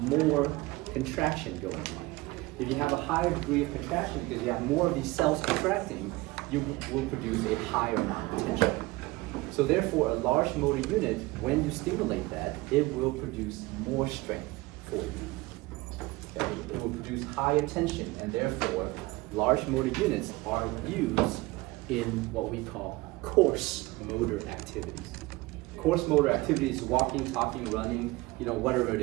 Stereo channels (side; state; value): left; quieter; 21.0 dB